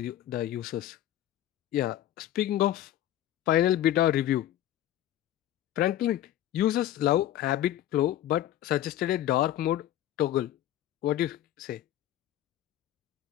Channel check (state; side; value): quieter; right; 12.8 dB